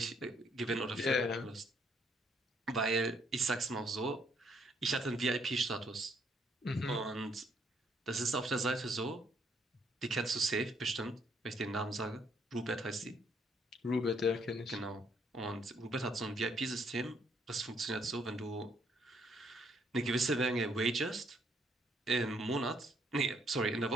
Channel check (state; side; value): normal; both; correlation 0.69